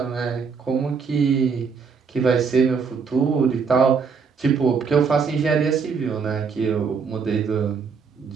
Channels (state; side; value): quieter; left; 5.7 dB